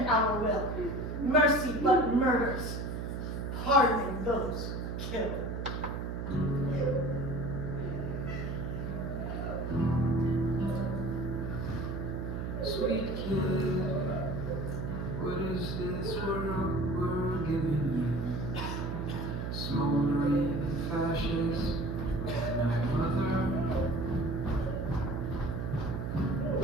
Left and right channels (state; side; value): noise; right; hum, 3 dB below the sound